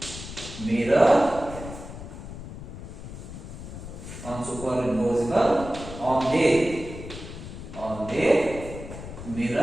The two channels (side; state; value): left; noise; rumble, 11 dB below the sound